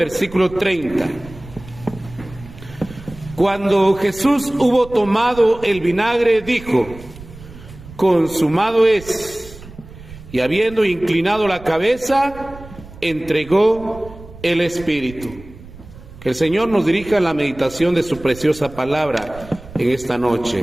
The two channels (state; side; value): noise; right; rumble, 17 dB below the sound